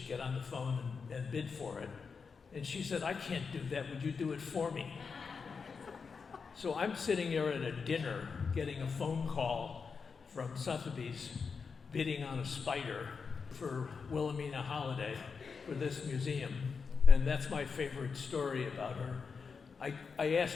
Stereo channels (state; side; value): quieter; right; 5.4 dB